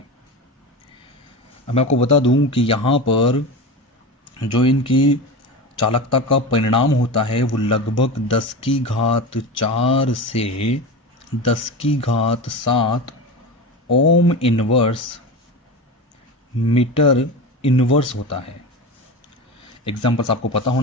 अब मैं आपको बता दूं कि यहाँ पर जो इनकी चालकता का परिणाम होता है वो लगभग 10⁴ से 10⁻7 ओम इनवर्स मीटर इनवर्स होता है। एग्जाम्पल्स आपको पता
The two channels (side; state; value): both; normal; correlation 0.25